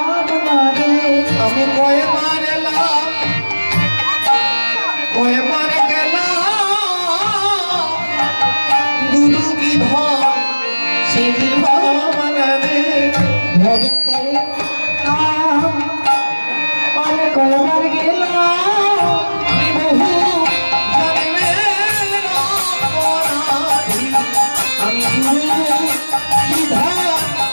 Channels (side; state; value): both; inverted; correlation -1.00